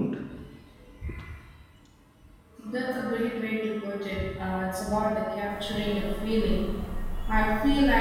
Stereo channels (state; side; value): identical; both; correlation 1.00